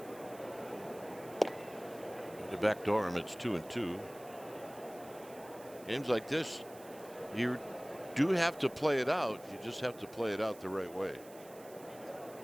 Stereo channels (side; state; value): right; noise; hiss, 20 dB below the sound